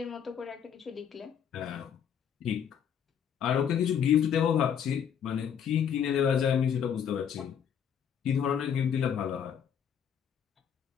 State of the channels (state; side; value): quieter; right; 8.2 dB